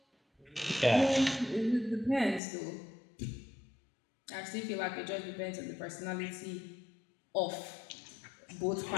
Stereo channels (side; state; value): right; drops out; at 2.4 s